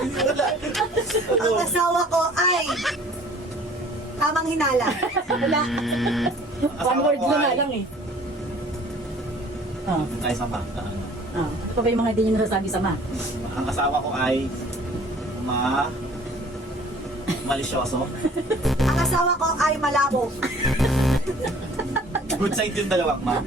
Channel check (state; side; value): normal; both; correlation 0.52